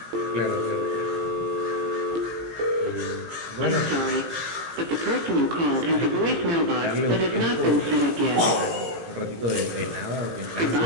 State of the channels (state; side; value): late; left; 17 ms